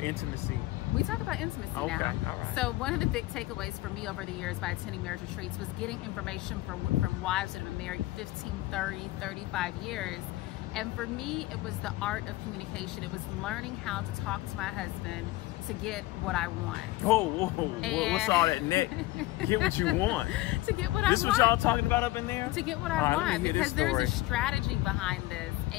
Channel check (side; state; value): right; quieter; 18.0 dB